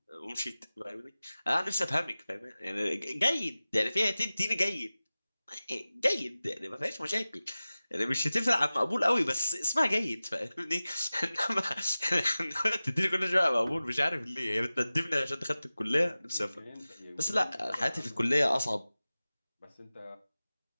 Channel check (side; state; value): both; inverted; correlation -0.97